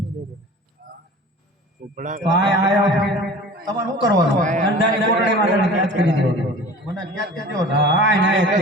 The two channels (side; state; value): both; normal; correlation 0.41